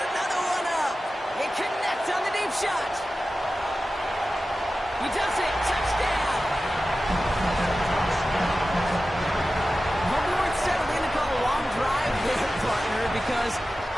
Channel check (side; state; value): both; normal; correlation 0.94